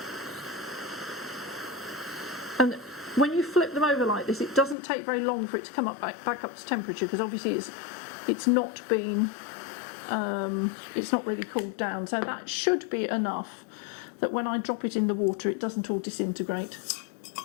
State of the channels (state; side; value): drops out; right; at 4.8 s